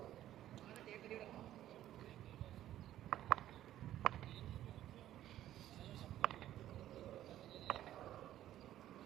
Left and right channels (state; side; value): quieter; left; 12.8 dB